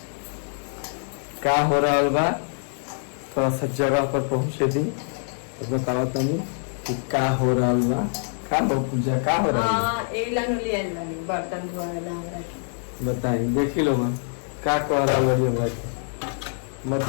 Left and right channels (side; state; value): right; silent; 62 dB below the other